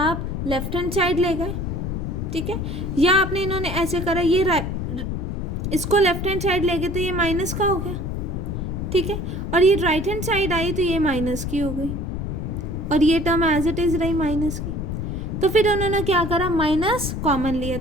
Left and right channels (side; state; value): left; noise; rumble, 3 dB below the sound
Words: लेफ्ट हैंड साइड ले गए। ठीक है, या आपने इन्होंने ऐसे करा, ये इसको लेफ्ट हैंड साइड ले गए तो ये माइनस का हो गया। ठीक है, और ये राइट हैंड साइड आई तो ये माइनस की हो गई और ये टर्म एज इट इज रही माइनस की। तो फिर उन्होंने क्या करा, माइनस कॉमन लिया,